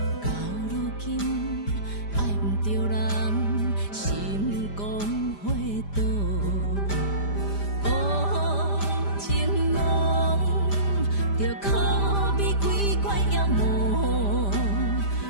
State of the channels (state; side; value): late; right; 5.0 ms